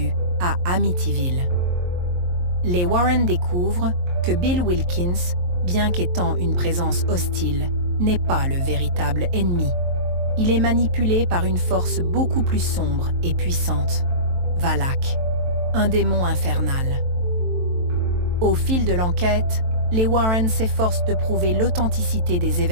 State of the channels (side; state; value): left; late; 23 ms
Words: à Amityville. Les Warren découvrent que Bill Wilkins, bien qu'étant une présence hostile, n'est pas le véritable ennemi. Il est manipulé par une force beaucoup plus sombre et puissante, Valak, un démon infernal. Au fil de l'enquête, les Warren s'efforcent de prouver l'authenticité des